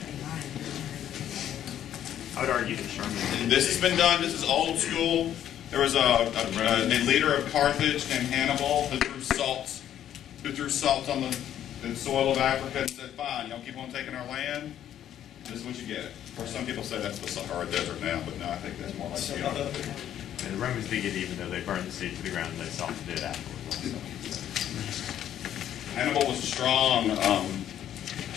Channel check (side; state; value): right; quieter; 10.8 dB